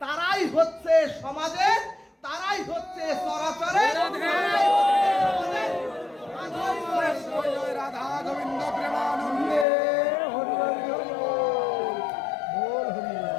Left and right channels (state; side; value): drops out; right; at 9.7 s